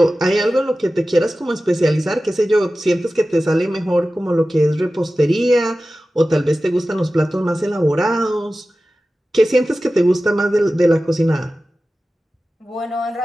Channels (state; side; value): normal; both; correlation 0.95